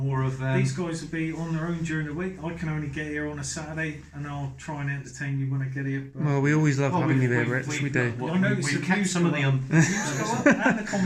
of. These guys will be on their own during the week. I can only get here on a Saturday, and I'll try and entertain you when I get here. But well, we always love having you there, Rich. We do. I noticed we've kept some of the and the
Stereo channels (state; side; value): identical; both; correlation 1.00